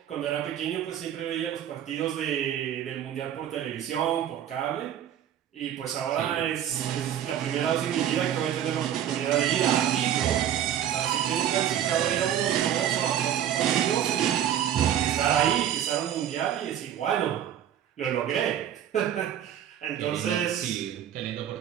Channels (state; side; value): quieter; left; 10.3 dB